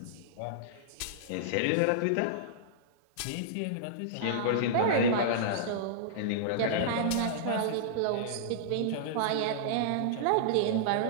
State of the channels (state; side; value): different; both; correlation -0.02